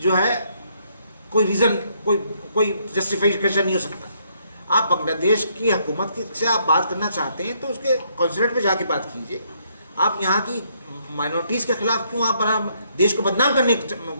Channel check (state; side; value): inverted; both; correlation -0.71